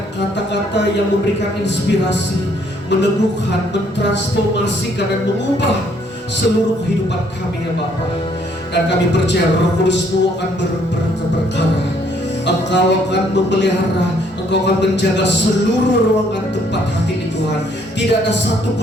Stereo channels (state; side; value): normal; both; correlation 0.66